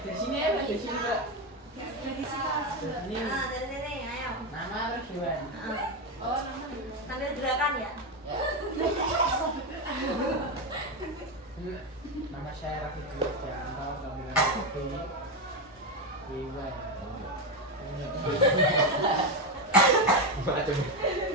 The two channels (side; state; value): both; normal; correlation 0.10